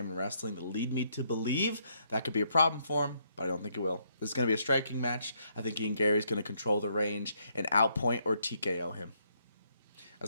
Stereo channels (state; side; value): inverted; both; correlation -0.73